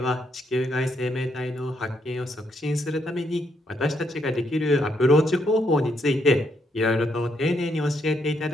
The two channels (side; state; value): both; normal; correlation 0.76